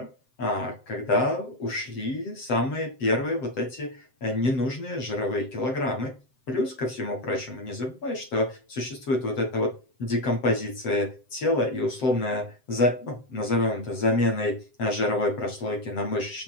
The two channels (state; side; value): late; right; 7.7 ms